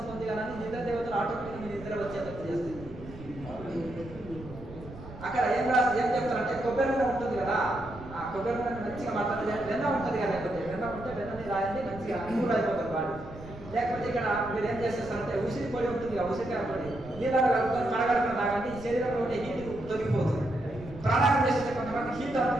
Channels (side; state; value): right; noise; rumble, 15 dB below the sound